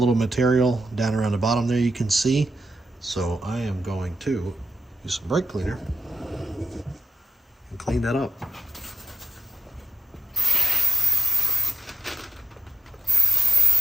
material down around the bottom there you can see, so I am going to use some brake cleaner and clean that up.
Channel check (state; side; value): normal; both; correlation 0.81